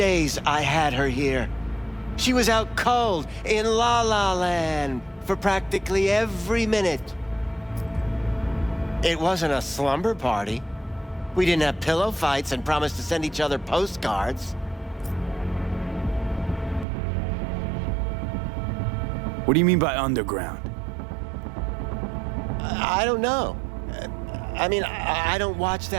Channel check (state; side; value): drops out; left; at 16.9 s